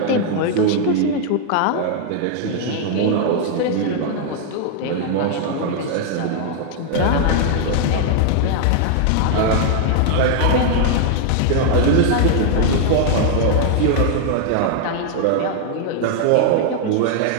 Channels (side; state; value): both; different; correlation 0.00